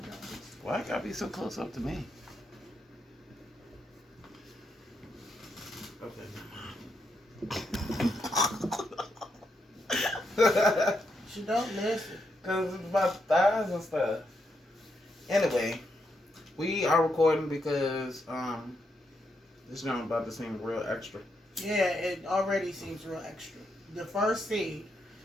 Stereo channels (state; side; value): normal; both; correlation 0.81